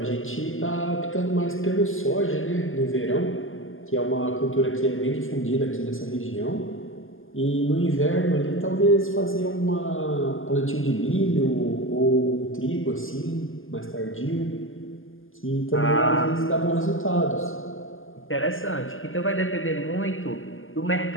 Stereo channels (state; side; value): late; right; 0.59 ms